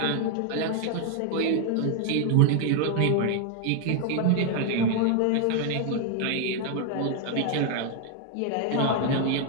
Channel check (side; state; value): both; different; correlation 0.00